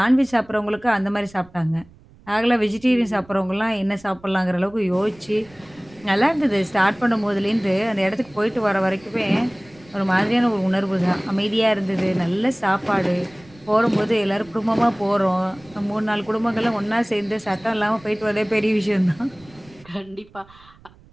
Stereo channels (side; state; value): right; noise; rumble, 26 dB below the sound